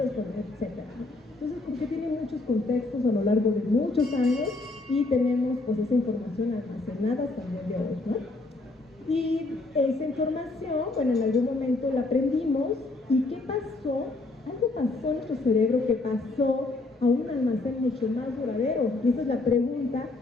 etcétera. Entonces, porque tiene muchos contextos a lo largo de muchos años, y tenemos pues esa información almacenada hasta el día de hoy, ¿no? Y esa información, bueno, en algún momento la aprendimos, ¿y qué pasó? Algo pasó en nuestro cerebro que pasó a un almacén mucho más duradero. Y esa es la pregunta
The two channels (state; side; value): quieter; right; 3.2 dB